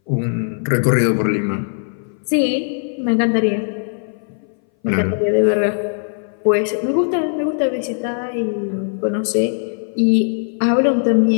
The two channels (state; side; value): silent; right; 61 dB below the other